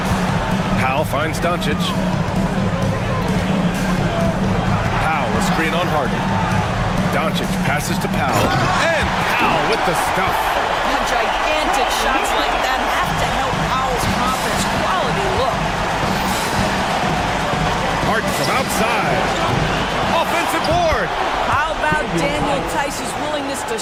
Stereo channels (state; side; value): identical; both; correlation 1.00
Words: Powell finds Doncic. Powell, a screen on Harden. Doncic passes to Powell. And Powell with the stuff. Gigantic shots like that have to help Powell's confidence. Quality look. Harden from outside. Offensive board. How about Daniel Tice's willingness to